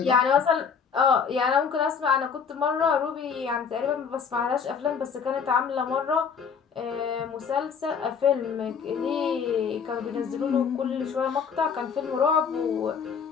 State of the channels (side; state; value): right; quieter; 6.5 dB